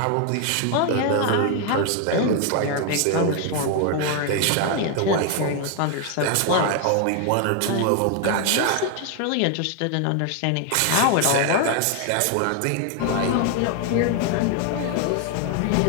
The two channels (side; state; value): both; different; correlation 0.00